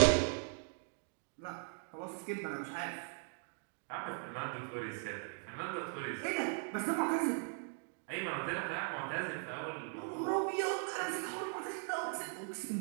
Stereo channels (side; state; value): left; silent; 52 dB below the other